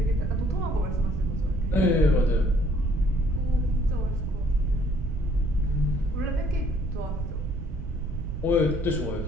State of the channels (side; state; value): right; noise; rumble, 6 dB below the sound